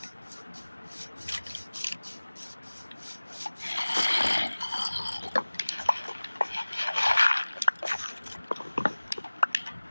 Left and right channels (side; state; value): both; inverted; correlation -1.00